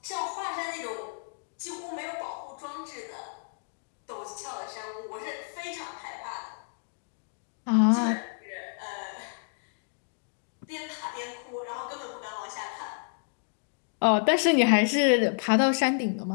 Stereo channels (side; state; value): right; silent; digital silence